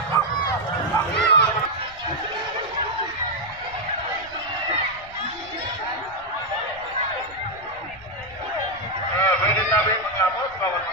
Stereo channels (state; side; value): noise; left; rumble, 22 dB below the sound